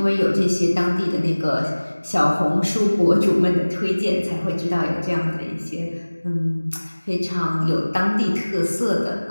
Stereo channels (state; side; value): inverted; both; correlation -1.00